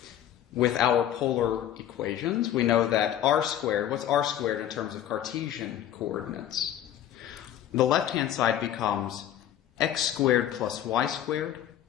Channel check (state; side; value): quieter; right; 11.1 dB